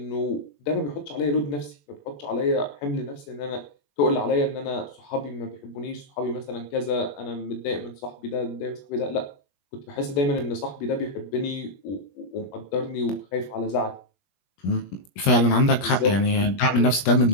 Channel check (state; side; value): late; right; 21 ms